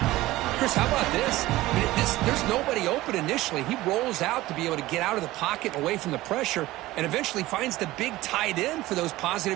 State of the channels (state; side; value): quieter; left; 17.5 dB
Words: Chris, how about this? I mean, there's nobody open initially. He rolls out to be able to get out of the pocket away from the pressure and eventually finds the big tight end for those